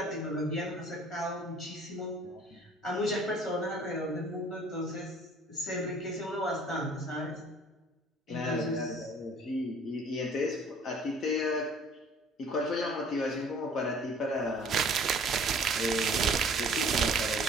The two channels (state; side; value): normal; both; correlation 0.52